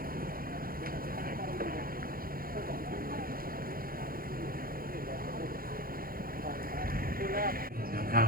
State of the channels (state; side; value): late; left; 0.42 ms